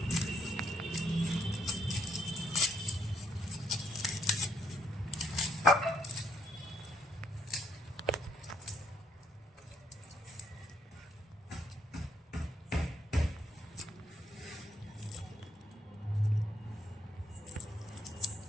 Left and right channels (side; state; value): both; normal; correlation 0.72